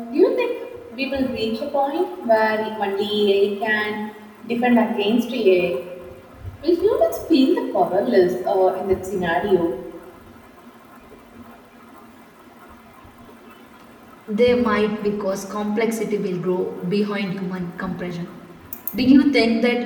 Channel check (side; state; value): both; identical; correlation 1.00